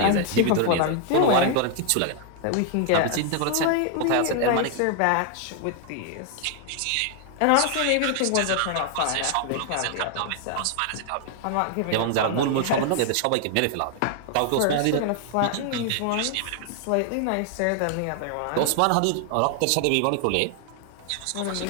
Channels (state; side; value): different; both; correlation 0.00